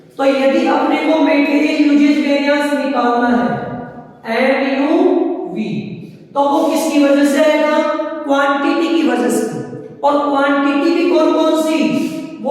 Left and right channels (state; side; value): identical; both; correlation 1.00